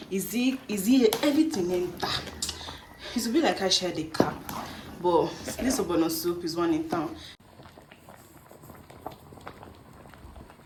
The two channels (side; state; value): both; identical; correlation 1.00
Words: Is he everything enter? It will be like I shared a cap, but this ogbono soup is one in town.